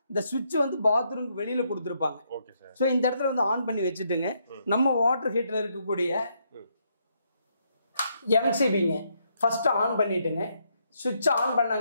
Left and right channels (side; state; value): both; inverted; correlation -0.76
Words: இந்த சுவிட்ச் வந்து பாத்ரூம்க்கு வெளியில் கொடுத்துருப்பாங்க. ஸோ இந்த இடத்துல வந்து ஆன் பண்ணி வச்சுட்டுங்க. நம்ம வாட்டர் ஹீட்டரில் இருக்கக்கூடிய எம்சிபிங்க ஃபர்ஸ்ட் ஆன் பண்ணிட்டுங்க. சுவிட்ச் ஆன்